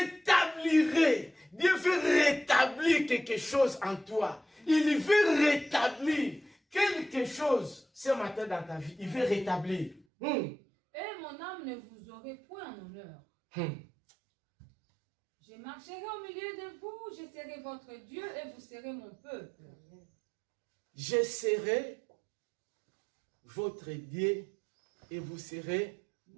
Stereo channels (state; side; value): drops out; left; at 10.1 s